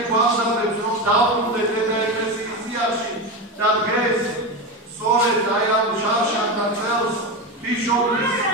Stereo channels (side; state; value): both; normal; correlation 0.18